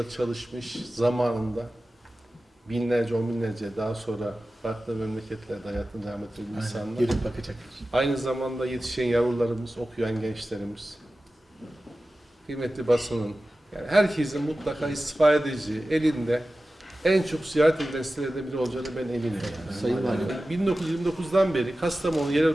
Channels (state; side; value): normal; both; correlation 0.95